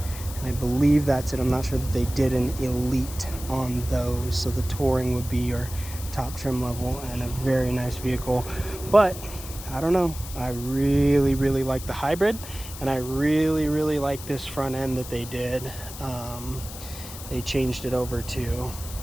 and I believe that's it. I'm not sure that they did an Elite on those, so the Touring would be your top trim level and a very nice vehicle. But I don't know, I really like the hybrid, and I really like this front end that they did. They changed it over to,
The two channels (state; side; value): noise; left; hiss, 13 dB below the sound